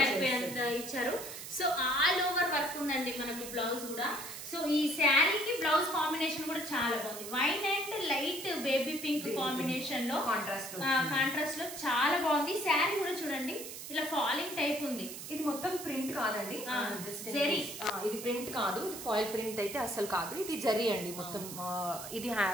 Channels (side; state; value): right; noise; hiss, 10 dB below the sound